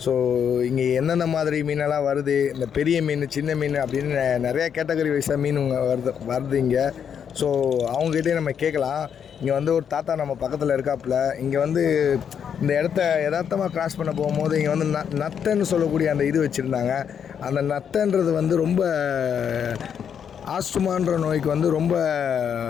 ஸோ இங்கே எந்தெந்த மாதிரி மீனெல்லாம் வருது, இந்த பெரிய மீன் சின்ன மீன் அப்படின்னு நிறையா கேட்டகரி வைஸாக மீன் வருது இங்கே. ஸோ அவங்ககிட்டே நம்ம கேட்கலாம். இங்கே வந்து ஒரு தாத்தா நம்ம பக்கத்தில் இருக்காப்புல. இங்கே வந்து இந்த இடத்த யதார்த்தமாக கிராஸ் பண்ண போகும்போது இங்கே வந்து நத்தைன்னு சொல்லக்கூடிய அந்த இது வச்சுருந்தாங்க. அந்த நத்தைன்றது வந்து ரொம்ப ஆஸ்துமான்ற நோய்க்கு வந்து ரொம்ப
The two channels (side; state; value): right; quieter; 7.9 dB